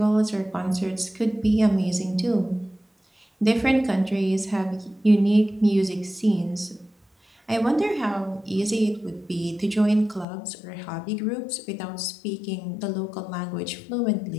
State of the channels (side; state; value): right; drops out; at 10.2 s